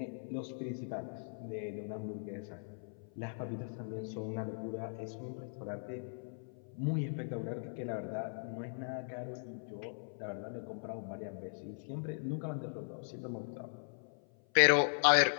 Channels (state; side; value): silent; right; 52 dB below the other